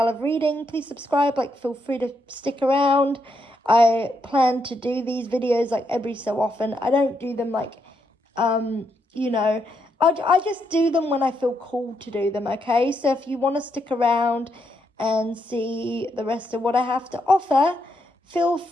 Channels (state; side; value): normal; both; correlation 0.79